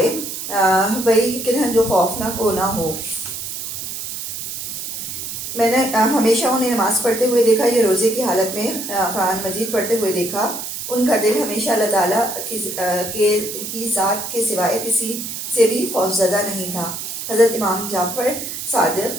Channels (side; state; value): right; noise; hiss, 6 dB below the sound